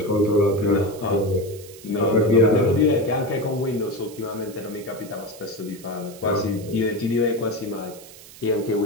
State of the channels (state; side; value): noise; right; hiss, 19 dB below the sound